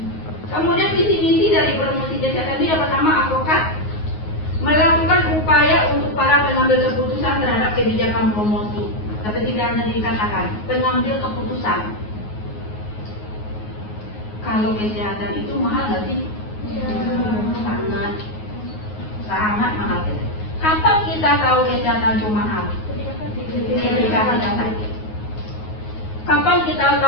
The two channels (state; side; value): late; right; 9.5 ms